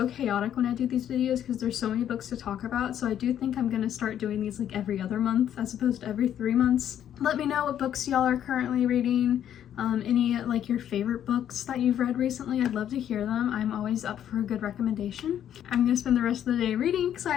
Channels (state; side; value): quieter; right; 10.2 dB